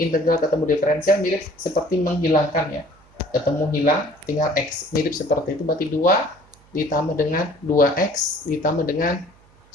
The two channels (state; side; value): noise; right; hum, 29 dB below the sound